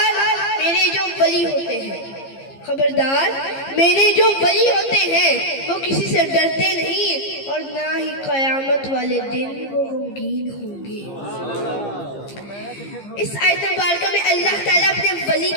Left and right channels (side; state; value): right; late; 15 ms